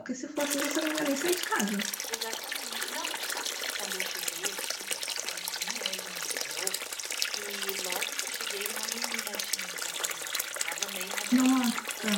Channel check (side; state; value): both; identical; correlation 1.00